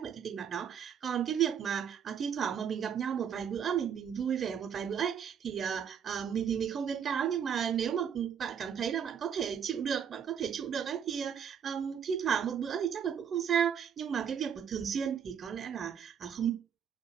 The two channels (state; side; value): quieter; left; 7.9 dB